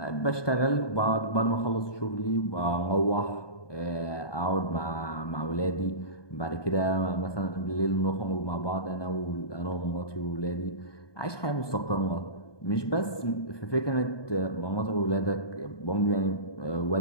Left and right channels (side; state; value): right; late; 1.2 ms